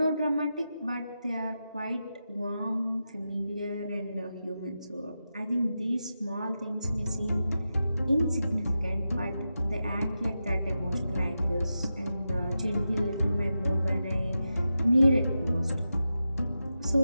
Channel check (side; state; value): both; inverted; correlation -0.90